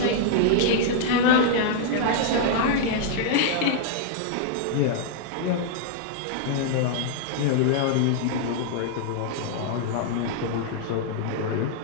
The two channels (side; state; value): both; different; correlation -0.01